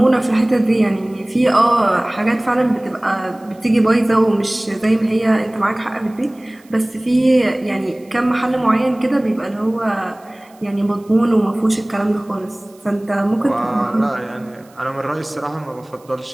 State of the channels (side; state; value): right; noise; hiss, 30 dB below the sound